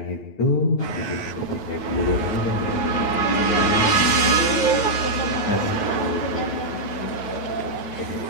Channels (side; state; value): right; late; 9.3 ms